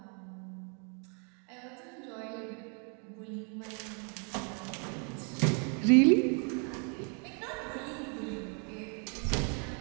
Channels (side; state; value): left; quieter; 39.3 dB